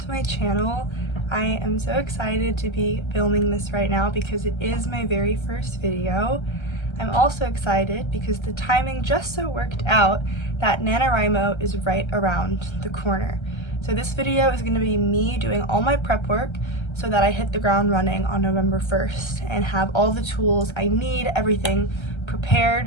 my channel. I am so excited to be filming this right now because it is my very first video. I'm also excited because the timing just so worked out that NaNoWriMo is right around the corner. So this video is going to be me doing all my prep work so that I hit the ground running on November 1st and have all the tools I need, everything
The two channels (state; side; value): late; right; 1.3 ms